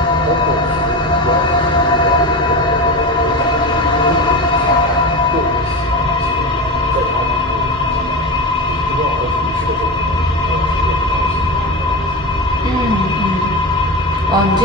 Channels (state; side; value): normal; both; correlation 0.23